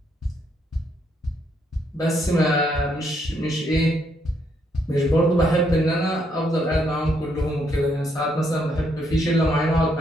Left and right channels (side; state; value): both; normal; correlation 0.74